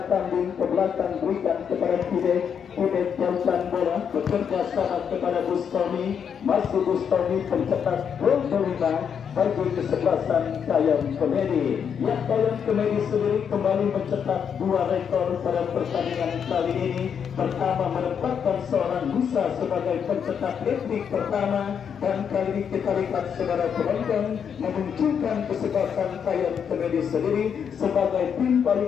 Kambing ke belakang berikan kepada Kibek jauhkan bola, bekerja sama kepada Bustami, masih Bustami pencetak gol kelima bagi kesebelasan Kayon Kemedi. Yang Kayon Kemedi sendiri kembali mencetak 2 rekor pada pertandingan kali ini. Pertama menempatkan seorang Musa sebagai pencetak hat-trick pertama, dan kali ini kita lihat saudara penonton memunculkan kesebelasan Kayon Kemedi sendiri sebagai tim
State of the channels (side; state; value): right; quieter; 7.5 dB